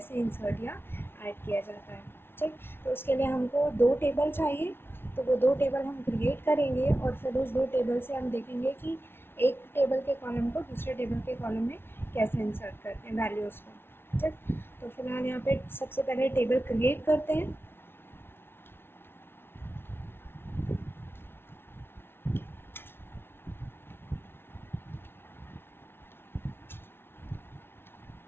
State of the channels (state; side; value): late; right; 0.11 ms